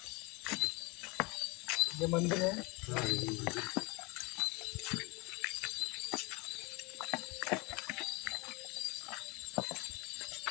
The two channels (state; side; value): quieter; right; 26.7 dB